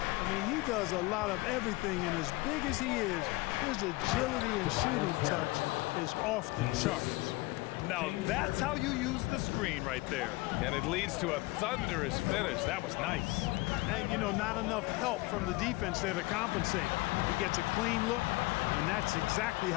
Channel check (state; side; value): quieter; right; 22.2 dB